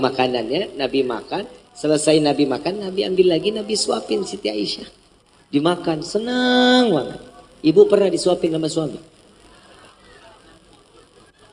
makanannya, Nabi makan. Selesai Nabi makan, Nabi ambil lagi, Nabi suapin Siti Aisyah. Dimakan, senang banget. Ibu pernah disuapin sama suami?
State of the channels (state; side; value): identical; both; correlation 1.00